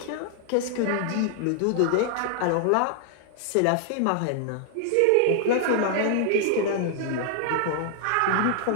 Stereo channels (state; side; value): different; both; correlation 0.00